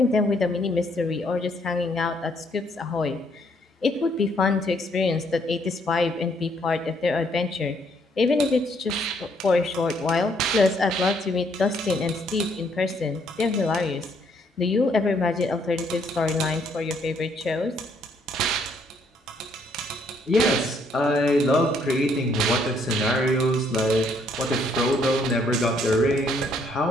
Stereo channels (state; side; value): normal; both; correlation 0.68